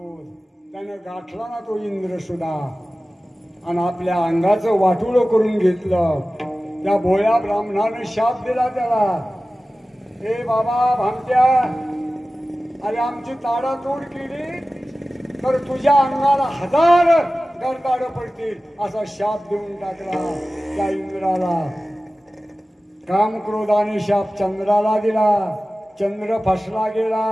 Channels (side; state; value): both; normal; correlation 0.96